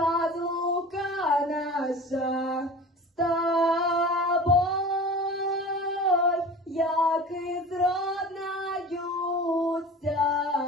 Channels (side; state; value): both; normal; correlation 0.37